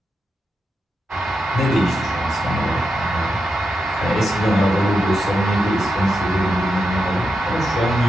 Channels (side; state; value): both; normal; correlation 0.87